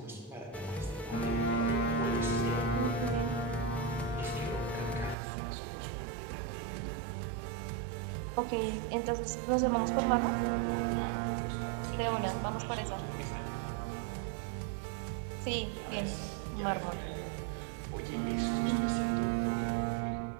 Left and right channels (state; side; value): drops out; left; at 5.2 s